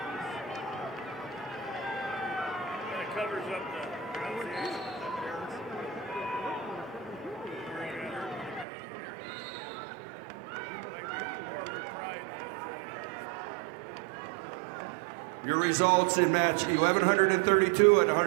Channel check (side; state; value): left; drops out; at 8.7 s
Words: Your results in match 1,132 at